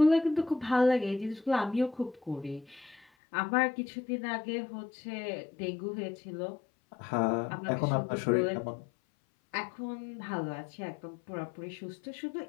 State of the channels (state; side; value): drops out; right; at 3.1 s